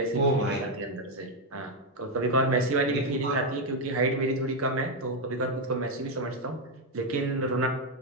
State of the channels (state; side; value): normal; both; correlation 0.04